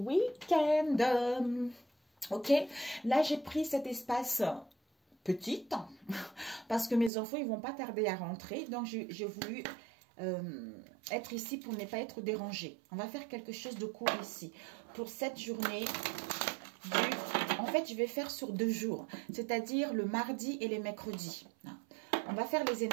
Ok, là j'ai pris cet espace petit parce que mes enfants ils vont pas tarder à rentrer, donc j'ai voulu être ici pour ne pas être dérangée. On va faire quelque chose de court ici pour cette journée en fait je vais faire sur 2 jours, c'est-à-dire le mardi et les mercredis. On va faire les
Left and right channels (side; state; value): left; drops out; at 7.1 s